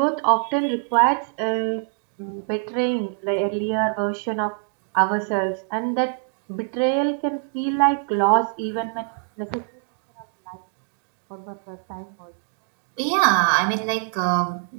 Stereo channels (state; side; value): quieter; left; 39.7 dB